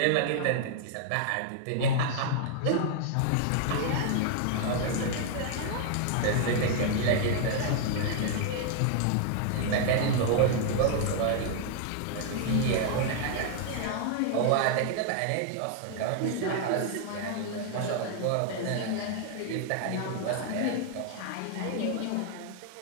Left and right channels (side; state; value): both; different; correlation 0.00